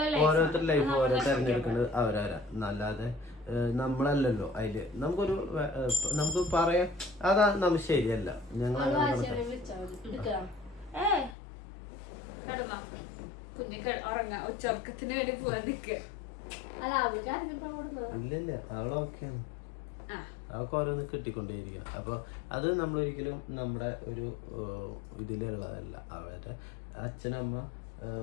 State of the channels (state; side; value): drops out; right; at 11.4 s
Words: ലൈഫ് ഓരോരുത്തരുടെ ലൈഫ് ഓരോ തെരഞ്ഞെടുക്കുന്നത് അവരാരാ. അല്ലാതെ നമ്മളല്ലല്ലോ അതില്. നമുക്ക് പറയാം അതാ നമുക്ക് ശരിയല്ല. ഞങ്ങൾ കുഞ്ഞ് ഉറങ്ങാ ഉച്ചർക്കത്തിന് വേണ്ടി പോവാൻ നിക്ക. ഇല്ലല്ല അവളൊക്കെയാണ്. അവൾക്ക് ഓരോന്ന് കിട്ടിക്കൊണ്ടേയിരിക്കണം. അപ്പൊ അത് നമ്മളൊരിക്കലും നമ്മുടെ ഒരു ഇതിലുള്ളതല്ല. അവരുടെ അച്ഛനമ്മ